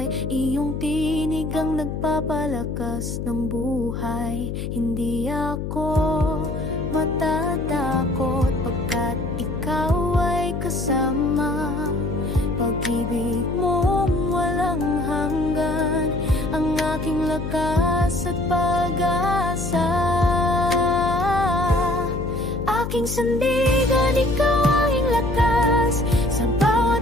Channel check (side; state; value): left; noise; hum, 5 dB below the sound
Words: iyong tinig ang nagpapalakas ng buhay. Hindi ako matatakot pagkat ikaw ay kasama. Pag-ibig mong walang hanggan, ang aking lakas at pag-asa. Aking sandigan, ikaw aking lakas. Sa bawat